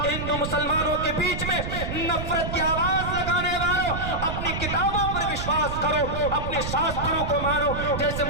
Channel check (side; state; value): right; noise; rumble, 5 dB below the sound